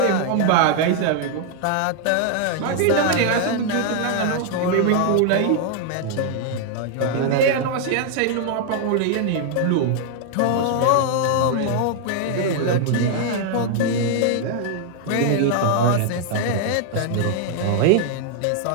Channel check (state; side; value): different; both; correlation 0.00